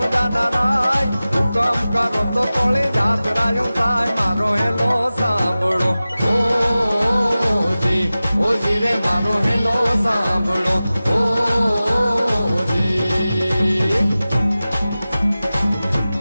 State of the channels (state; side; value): inverted; both; correlation -0.96